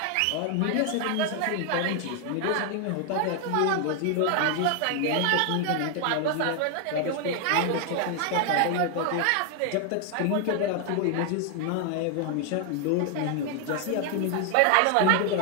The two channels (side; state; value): both; different; correlation 0.00